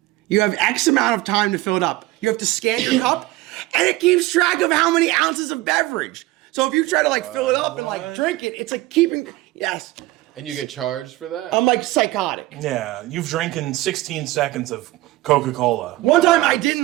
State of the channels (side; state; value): left; quieter; 18.4 dB